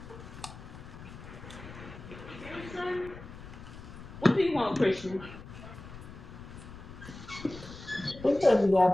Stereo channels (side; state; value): left; noise; rumble, 14 dB below the sound